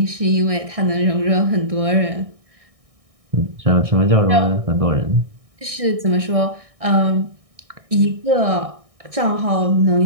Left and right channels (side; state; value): left; late; 1.6 ms